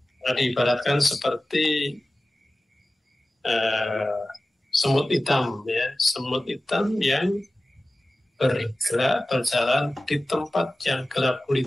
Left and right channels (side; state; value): both; normal; correlation 0.96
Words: diibaratkan seperti semut hitam ya, semut hitam yang bergerak berjalan di tempat yang gelap